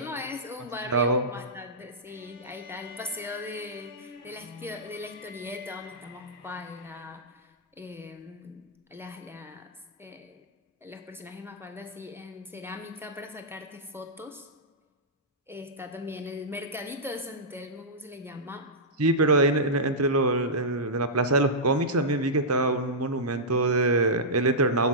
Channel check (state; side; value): normal; both; correlation -0.12